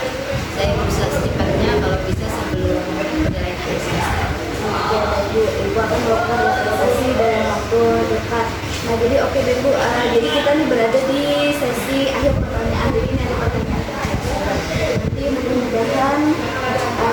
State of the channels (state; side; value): identical; both; correlation 1.00